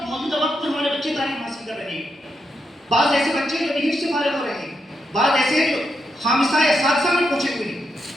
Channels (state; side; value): normal; both; correlation 0.83